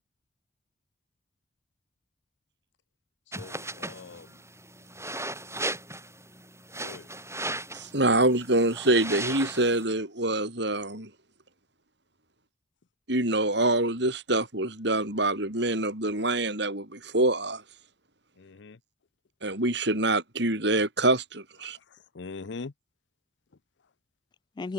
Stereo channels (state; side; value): normal; both; correlation -0.06